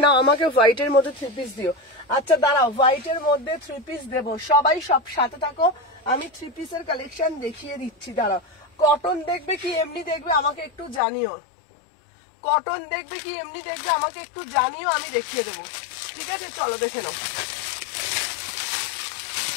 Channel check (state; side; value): drops out; right; at 11.0 s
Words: নাও। আমাকে হোয়াইটের মধ্যে 3 পিস দিও। আচ্ছা, দাঁড়াও, হোয়াইটের মধ্যে 3 পিস দেবো, সবাই সব সাথে থাকো, আমি 3 পিসের কালেকশন দেখিয়ে দিচ্ছি। দাঁড়াও, কটন দেখবে কি এমনি দেখবে আমাকে একটু জানিও, কটন দেখবে কি এমনি দেখবে আমাকে একটু জানিও, আমি দেখিয়ে দেবো, ঠিক আছে? চলো, দেখে নাও।